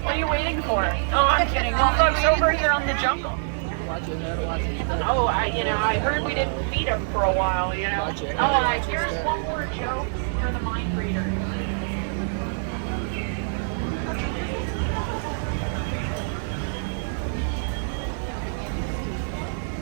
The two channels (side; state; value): left; silent; digital silence